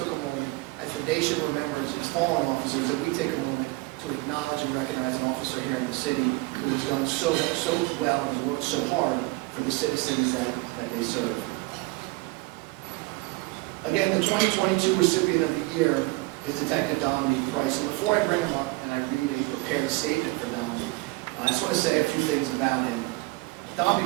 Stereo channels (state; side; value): quieter; left; 23.2 dB